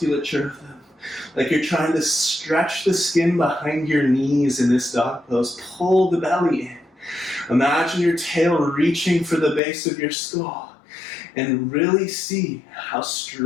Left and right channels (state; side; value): drops out; right; at 9.6 s